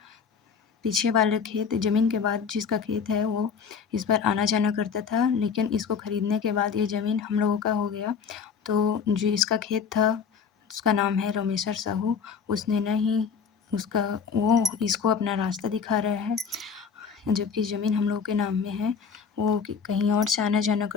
पीछे वाले खेत ज़मीन के बाद जिसका खेत है वो इस पर आना-जाना करता था, लेकिन इसको खरीदने के बाद ये ज़मीन हम लोगों का हो गया। तो जो इसका खेत था उसका नाम है रोमेश्वर साहू, उसने ना ही उसका वो इसको अपना रास्ता दिखा रहा है, जबकि ज़मीन हम लोगों के नाम में है। वो कहीं और से आना-जाना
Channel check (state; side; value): quieter; right; 6.3 dB